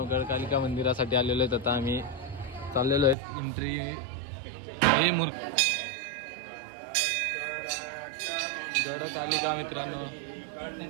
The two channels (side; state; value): left; drops out; at 3.2 s